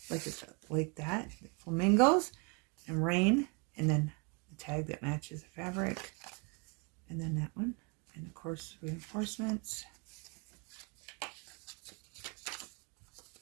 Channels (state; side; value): quieter; left; 33.2 dB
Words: like that. Flamingos and rain. And then the tag that matches the fabric. And then that one. And of course, reinforcements.